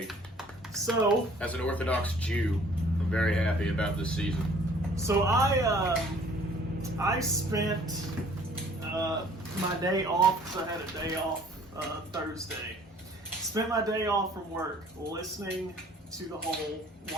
So, as an Orthodox Jew, I'm very happy about this season. So I spent my day off, because I had a day off Thursday. Spent my day off from work listening to the whole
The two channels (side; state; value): both; normal; correlation 0.55